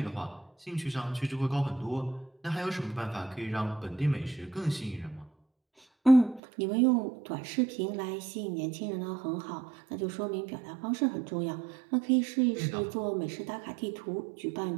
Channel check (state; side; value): drops out; left; at 6.4 s